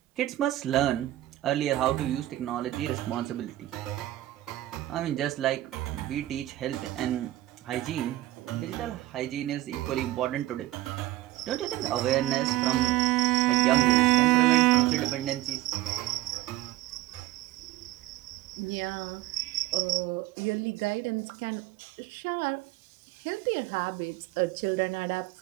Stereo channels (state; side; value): quieter; left; 16.0 dB